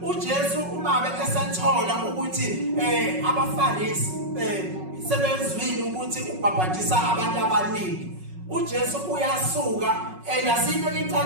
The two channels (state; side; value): late; left; 5.4 ms